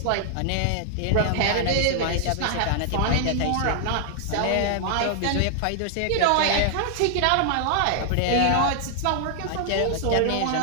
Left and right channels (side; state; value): both; different; correlation -0.01